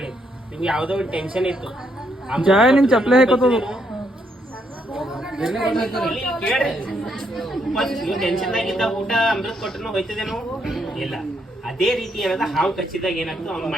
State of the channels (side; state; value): both; normal; correlation 0.75